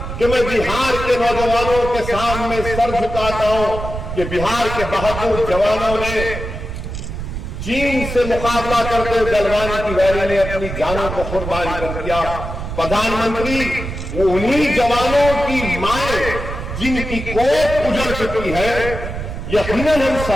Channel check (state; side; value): noise; right; rumble, 7 dB below the sound